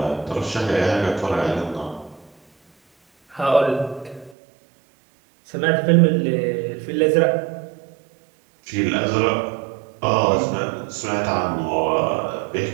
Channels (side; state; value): left; drops out; at 4.4 s